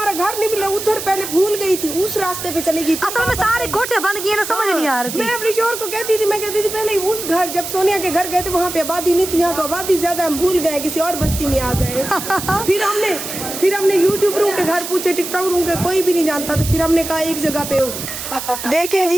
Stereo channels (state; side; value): noise; right; hiss, 7 dB below the sound